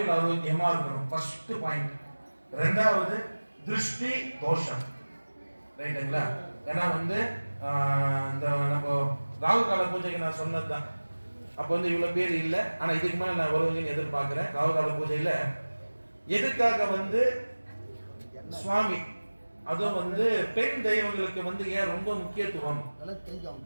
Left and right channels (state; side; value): inverted; both; correlation -1.00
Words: ஆரோக்கியமா இருக்கணும். First point. ரெண்டாவது திருஷ்டி தோஷம் ரைட்டுங்களா. ஏன்னா வந்து இந்த நம்ம ராகு கால பூஜைக்கு நான் சொன்னதுதான். அப்போ வந்து இவ்வளவு பேர் இல்லை, ஆனா இதுக்கு மேல நான் வருவீங்கன்னு எதிர்பார்க்கிறேன். ராகு கால பூஜையில எதுக்காக வந்து சுவாமி அதுவும் வந்து பெண் தெய்வங்களுக்கு வந்து ஏன் ரொம்ப முக்கியத்துவம்